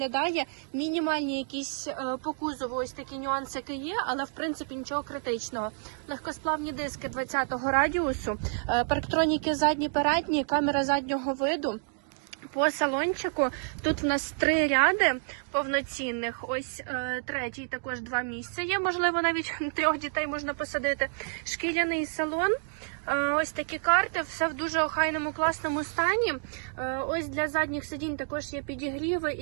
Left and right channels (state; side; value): silent; left; 58 dB below the other